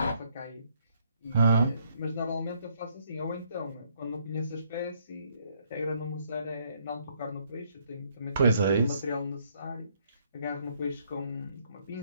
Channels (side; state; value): both; inverted; correlation -0.69